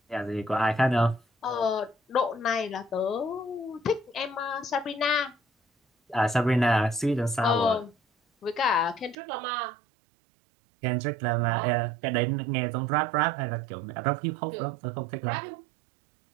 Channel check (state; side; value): drops out; left; at 9.2 s